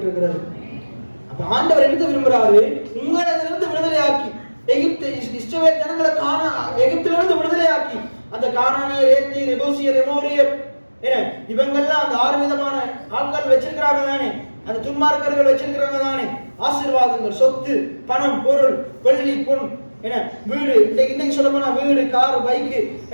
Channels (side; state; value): both; inverted; correlation -1.00